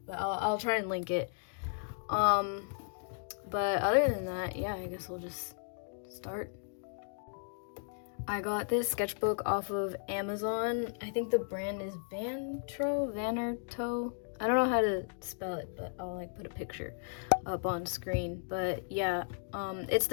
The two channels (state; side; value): silent; right; digital silence